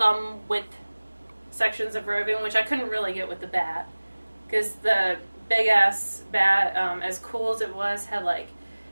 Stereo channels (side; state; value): both; inverted; correlation -1.00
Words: width sections of roving, which I couldn't really get with the bat. Because the big ass bat, as cool as it was, had like